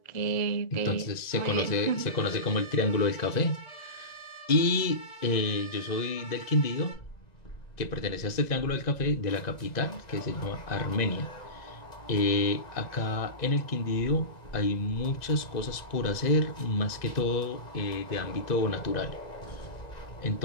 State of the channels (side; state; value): right; late; 2.0 ms